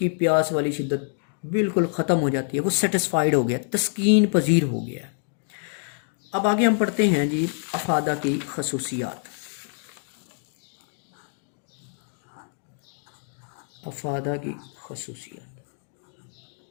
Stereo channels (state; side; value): silent; right; 56 dB below the other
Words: پیاس والی شدت بالکل ختم ہو جاتی ہے، وہ سیٹسفائیڈ ہو گیا، تسکین پذیر ہو گیا ہے۔ اب آگے ہم پڑھتے ہیں جی افادہ کی خصوصیات۔ افادہ کی خصوصیات،